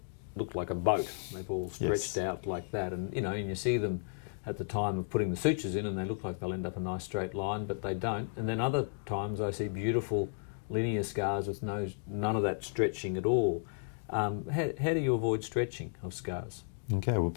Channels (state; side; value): silent; right; digital silence